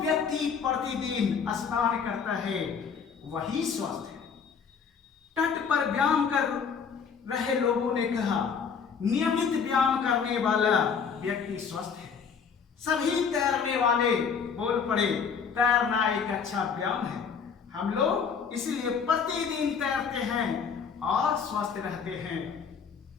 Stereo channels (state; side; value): quieter; right; 6.3 dB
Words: प्रतिदिन स्नान करता है वही स्वस्थ है। तट पर व्यायाम कर रहे लोगों ने कहा, नियमित व्यायाम करने वाला व्यक्ति स्वस्थ है। सभी तैरने वाले बोल पड़े, तैरना एक अच्छा व्यायाम है, हम लोग इसलिए प्रतिदिन तैरते हैं और स्वस्थ रहते हैं।